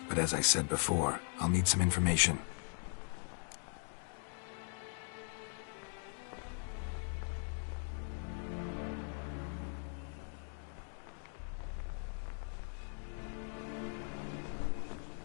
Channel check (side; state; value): right; silent; 51 dB below the other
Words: But as I said before, I'll need some information.